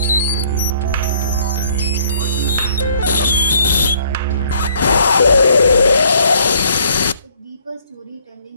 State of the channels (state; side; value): inverted; both; correlation -0.63